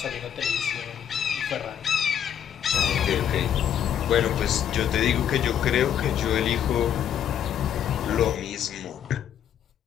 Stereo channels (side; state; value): right; quieter; 9.4 dB